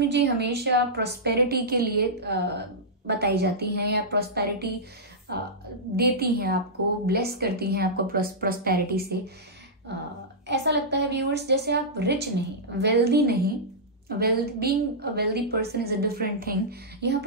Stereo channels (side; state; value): both; normal; correlation -0.13